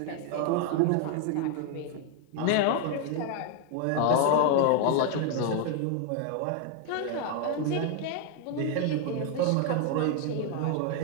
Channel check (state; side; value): different; both; correlation 0.00